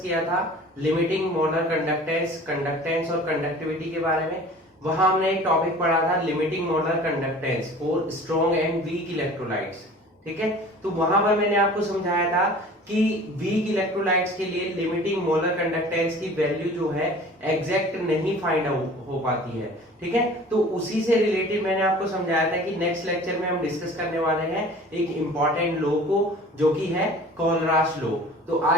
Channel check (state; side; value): normal; both; correlation 0.44